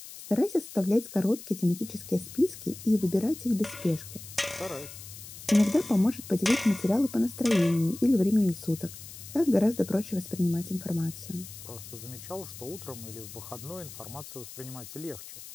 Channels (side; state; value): left; noise; hiss, 14 dB below the sound